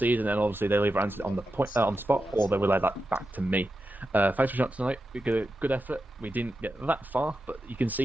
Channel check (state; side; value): normal; both; correlation 0.90